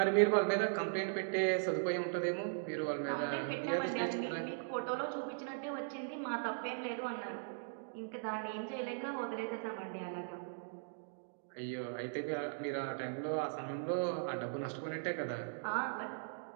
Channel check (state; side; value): silent; left; digital silence